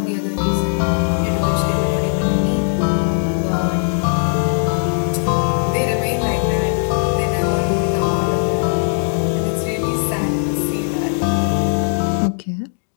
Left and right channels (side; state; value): right; silent; digital silence